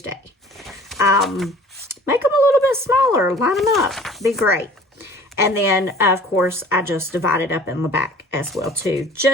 Make them a little bit smaller. Line them up. Be great. And then, of course, I just divide it up in the back as well, too,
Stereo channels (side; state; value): both; normal; correlation 0.47